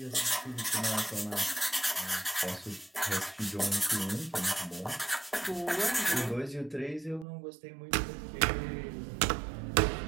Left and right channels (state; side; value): drops out; left; at 7.2 s